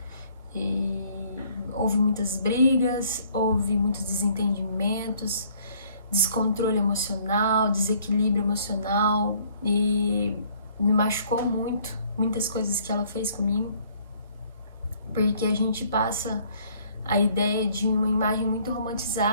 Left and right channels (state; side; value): inverted; both; correlation -0.61